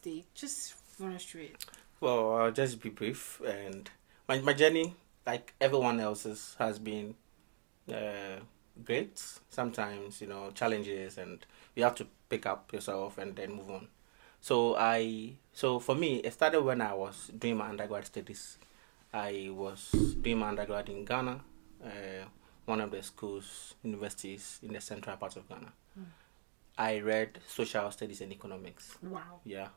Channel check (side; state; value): left; silent; digital silence